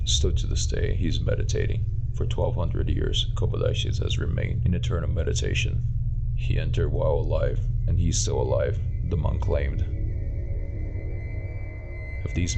Still to this day, he is meditating. For 1200 years, Kobodaishi has remained in eternal meditation. He entered while alive, and he is still alive," the monk claimed. Have these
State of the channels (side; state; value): both; identical; correlation 1.00